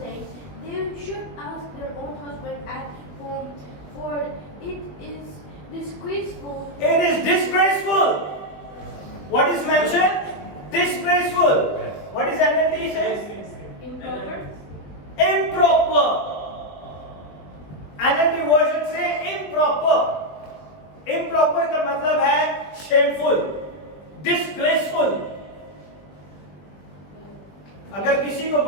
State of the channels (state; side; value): late; right; 21 ms